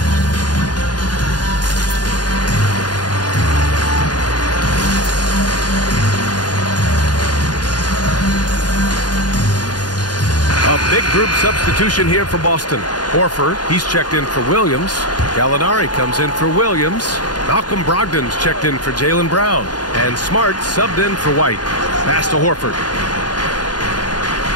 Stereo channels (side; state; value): right; late; 0.69 ms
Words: A big group substitution here for Boston. Horford, he's checked in for Williams. Gallinari comes in for Williams. Malcolm Brogdon's checked in for Jaylen Brown. And Smart subbed in for White. Pass to Horford.